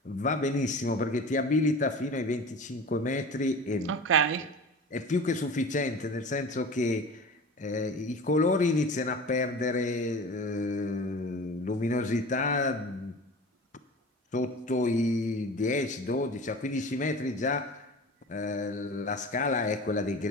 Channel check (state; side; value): normal; both; correlation 0.36